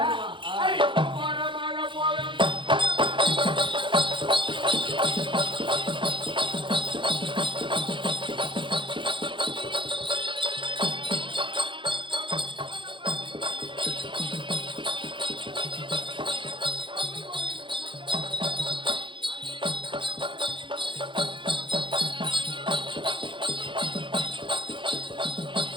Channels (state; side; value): late; left; 0.24 ms